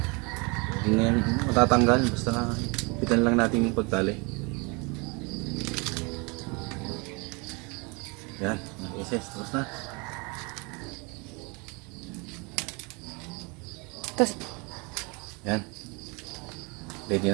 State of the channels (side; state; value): left; quieter; 29.8 dB